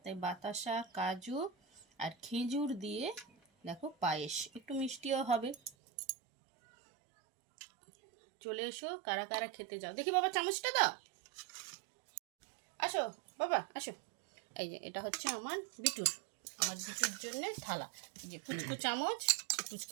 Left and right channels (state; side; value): drops out; left; at 5.7 s